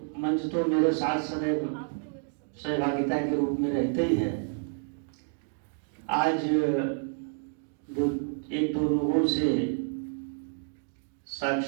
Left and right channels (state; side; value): silent; left; 58 dB below the other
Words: मंच तो मेरे साथ सदैव सहभागिता के रूप में रहते ही है। आज एक दो लोगों से